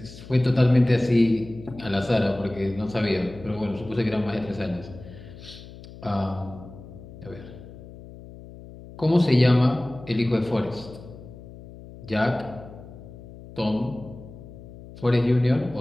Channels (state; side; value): noise; left; hum, 17 dB below the sound